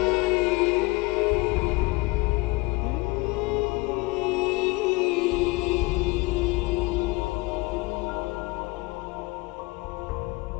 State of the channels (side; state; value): right; quieter; 23.4 dB